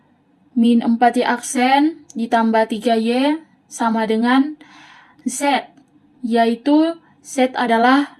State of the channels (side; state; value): both; identical; correlation 1.00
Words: min 4Y aksen ditambah 3Y sama dengan Z, yaitu Z adalah